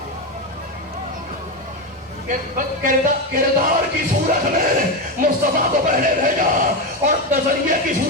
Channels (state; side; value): normal; both; correlation 0.12